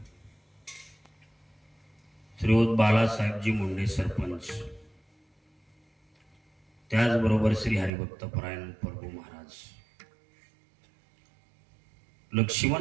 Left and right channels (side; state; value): left; drops out; at 7.9 s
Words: श्रीयुत बालासाहेबजी मुंडे सरपंच, त्याचबरोबर श्री हरिभक्त परायण प्रभू महाराज